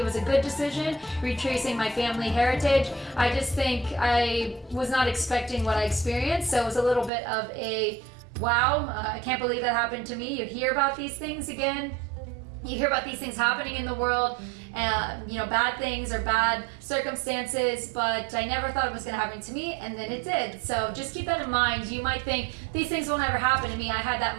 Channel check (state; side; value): drops out; left; at 7.1 s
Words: was a good decision, retracing my family heritage. I just think I was not expecting what I experienced, so it was a little bit of a wow, I can't believe that happened to me. You hear about these things again. You hear about these things happening in the world, bad things or bad circumstances, but I never thought it was going to happen to me, and then it did. So just keep that in mind. You might think these things will never happen to me. I had that